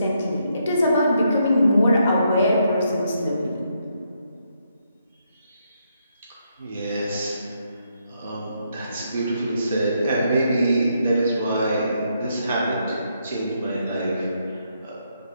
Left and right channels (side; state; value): both; inverted; correlation -0.77